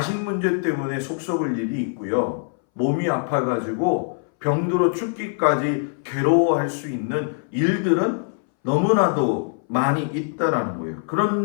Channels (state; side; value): silent; right; 62 dB below the other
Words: 문제 때문에 속 썩을 일이 있고요. 몸이 아파가지고 병들어 죽기까지 괴로워할 수 있는 일들은 너무나도 많이 있다라는 거예요.